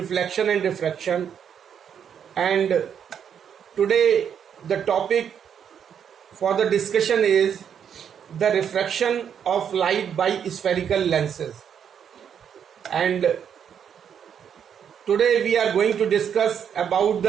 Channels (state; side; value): quieter; left; 8.2 dB